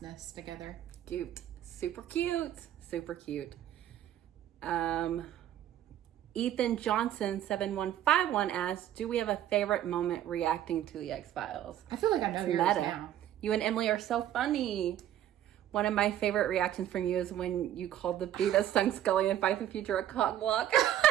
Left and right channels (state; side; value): quieter; left; 11.7 dB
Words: together. Cute. Super cute. Super cute. Ethan Johnson 7151 asks, do we have a favorite moment reacting to the X-Files? I feel like I know yours now. You and Emily are so funny. One of my favorite reactions from you is when you called the bee that stung Scully in Fight the Future a cock block.